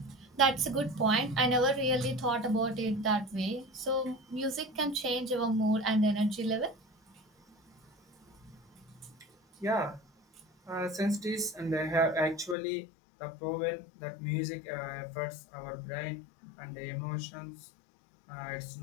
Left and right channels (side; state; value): right; drops out; at 12.6 s